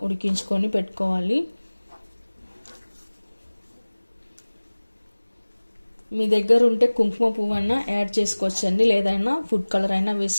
ఉడికించుకొని పెట్టుకోవాలి. మీ దగ్గర ఉంటే కుంకుమ పువ్వు అయినా యాడ్ చేసుకోవచ్చండి, లేదైనా ఫుడ్ కలర్ అయినా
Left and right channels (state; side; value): inverted; both; correlation -1.00